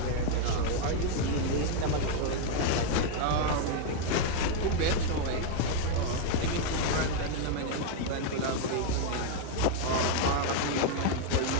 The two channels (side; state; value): both; different; correlation 0.00